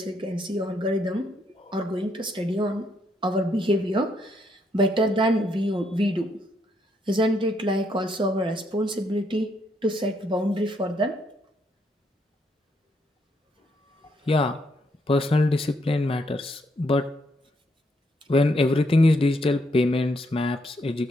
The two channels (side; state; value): both; normal; correlation 0.75